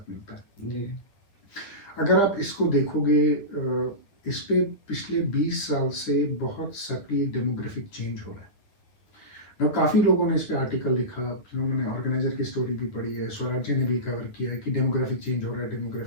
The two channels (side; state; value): right; late; 9.7 ms